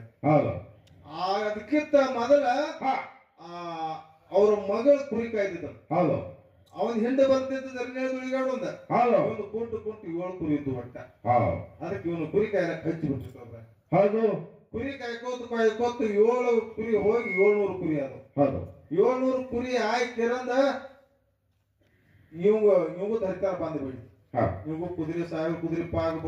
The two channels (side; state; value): both; identical; correlation 1.00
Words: ಅದಕ್ಕಿಂತ ಮೊದಲ ಅವ್ರ ಮಗಳು ಕುರಿ ಕಾಯ್ತಿದ್ದ. ಅವನ್ ಹಿಂದೆ ಬರ್ತಿದ್ದ ದುಳಿಗಾಡು ಒಂದ ಒಂದು ಕುಂಟು 7 ಕುರಿ ಇದ್ದು ಒಟ್ಟ. ಅದಕ್ಕೆ ಇವನು ಕುರಿ ಕಾಯಲಕ್ ಹಚ್ಚಿ ಬಿಟ್ಟಿರ್ತಾರೆ. ಕುರಿ ಕಾಯ್ಕೋತ 7 ಕುರಿ ಹೋಗಿ 700 ಕುರಿ ಅದು. 700 ಕುರಿ ಆಯ್ತಿರಂದ ಇವಂಗು ಧರಿತಾರ ಬಂದು ಬಿಡಿ. ಇವಂಗು ಕುದುರೆ 1000 ಕುದುರೆ ಪಾಗ